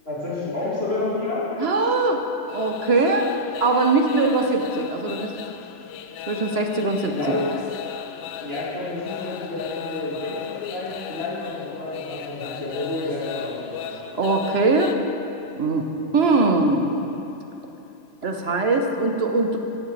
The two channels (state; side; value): late; right; 2.9 ms